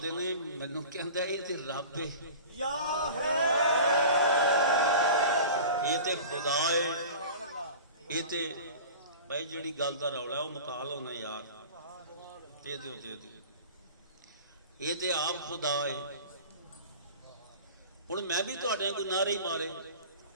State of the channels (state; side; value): inverted; both; correlation -0.38